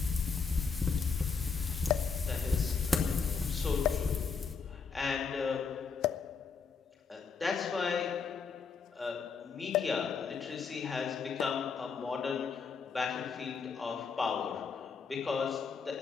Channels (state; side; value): quieter; right; 5.5 dB